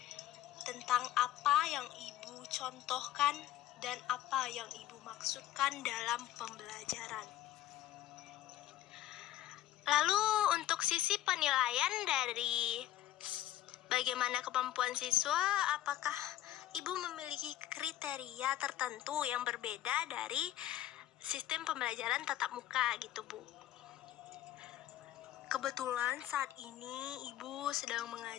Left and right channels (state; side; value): quieter; right; 13.5 dB